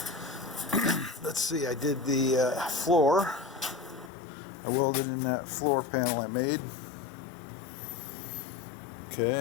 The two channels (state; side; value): drops out; right; at 4.1 s